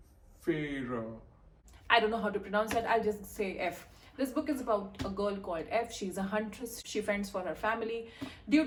I don't know how to pronounce that. I'll just say F. This book is about a girl called F. She's a huntress. She fends for her family. Due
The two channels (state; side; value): identical; both; correlation 1.00